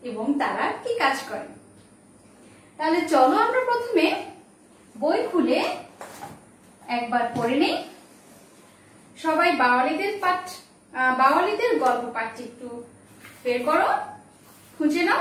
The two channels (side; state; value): both; identical; correlation 1.00